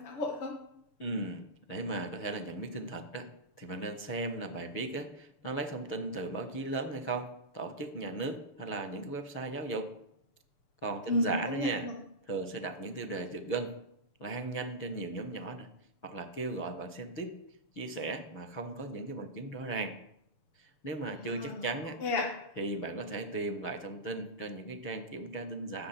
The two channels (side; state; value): right; late; 6.9 ms